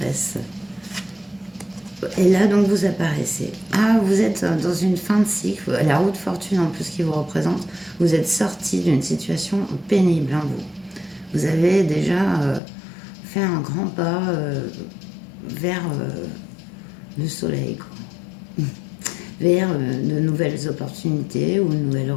Et là, donc, vous apparaissez. Ah, vous êtes dans une fin de cycle, la roue de fortune en plus qui vous représente. Vous êtes sorti d'une situation pénible, hein, vous. Vous avez déjà fait un grand pas vers le soleil, quoi. Vers de nouvelles opportunités ou de nouvelles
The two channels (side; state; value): right; drops out; at 12.6 s